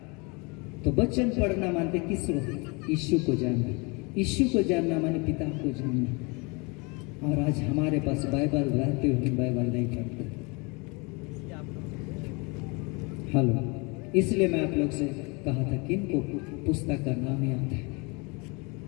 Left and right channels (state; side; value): quieter; right; 29.3 dB